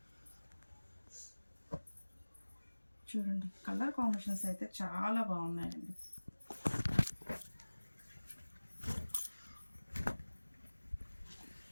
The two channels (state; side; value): inverted; both; correlation -1.00